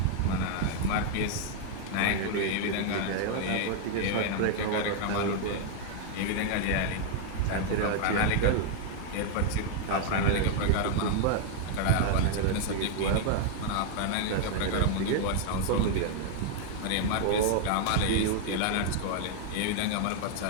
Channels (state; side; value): different; both; correlation 0.00